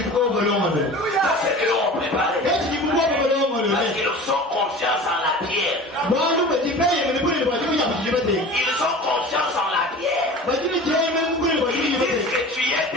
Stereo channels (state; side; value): normal; both; correlation 0.38